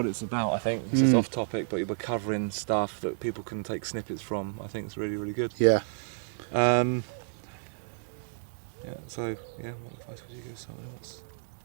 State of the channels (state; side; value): silent; left; digital silence